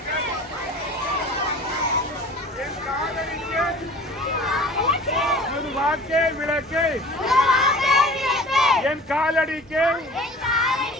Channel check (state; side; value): normal; both; correlation 0.43